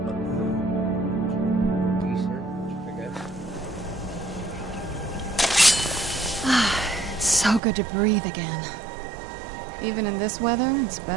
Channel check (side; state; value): left; drops out; at 7.6 s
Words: other one's decent, I guess. It's so good to breathe again. Even in this weather, it's